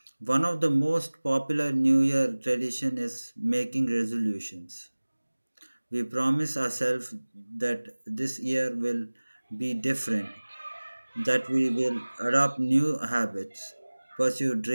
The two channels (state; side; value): inverted; both; correlation -1.00